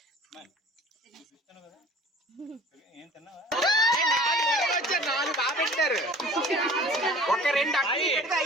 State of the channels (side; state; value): both; normal; correlation 0.45